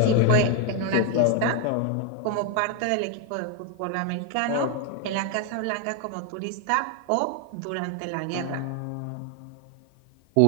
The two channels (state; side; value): different; both; correlation 0.01